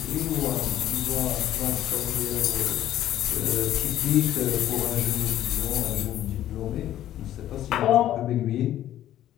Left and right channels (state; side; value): quieter; right; 12.5 dB